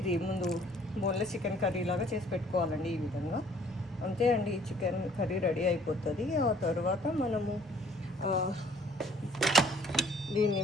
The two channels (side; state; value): both; normal; correlation 0.57